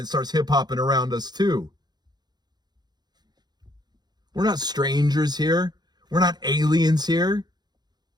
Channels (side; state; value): left; late; 0.20 ms